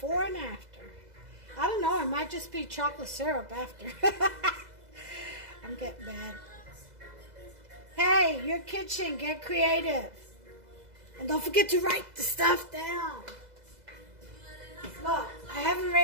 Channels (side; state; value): left; late; 2.0 ms